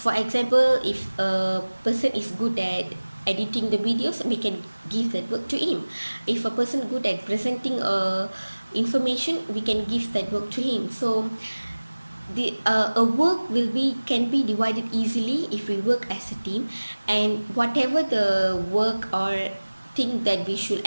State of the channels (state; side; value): inverted; both; correlation -1.00